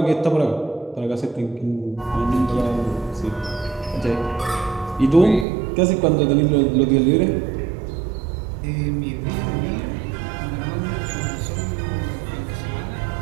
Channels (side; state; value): left; drops out; at 5.5 s